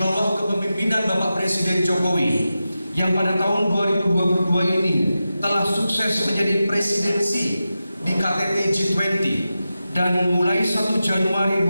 kepemimpinan Bapak Presiden Jokowi yang pada tahun 2022 ini telah sukses menjadi presidensi di KTT G20, dan mulai 1 Januari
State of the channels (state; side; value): inverted; both; correlation -0.92